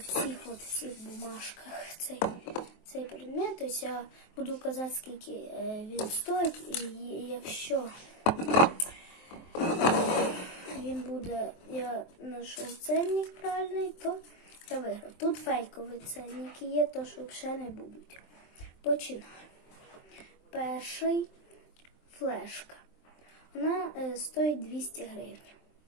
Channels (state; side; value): late; right; 23 ms